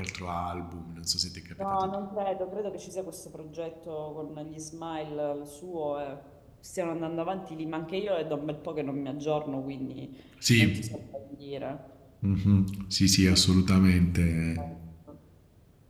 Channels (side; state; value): both; identical; correlation 1.00